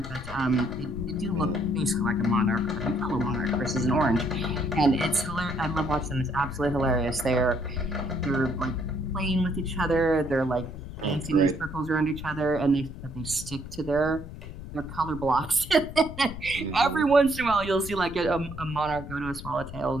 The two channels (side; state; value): left; noise; rumble, 11 dB below the sound